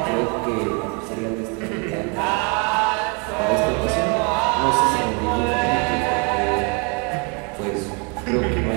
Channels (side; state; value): left; quieter; 34.1 dB